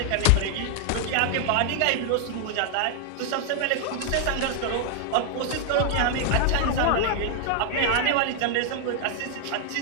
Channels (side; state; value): both; different; correlation 0.00